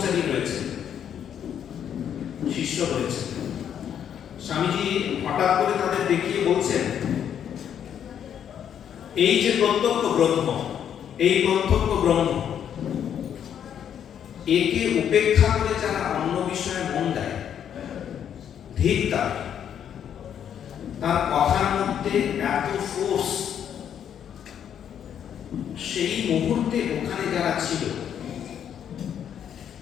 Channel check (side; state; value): right; quieter; 9.0 dB